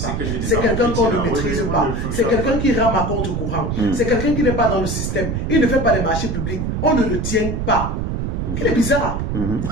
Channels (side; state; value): right; noise; rumble, 2 dB below the sound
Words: C'est quelqu'un qu'on ne maîtrise pas. C'est quelqu'un qui rame à contre-courant. C'est quelqu'un qui n'est pas dans le système. Il ne fait pas les marchés publics. On ne le tient pas. Il est bizarre.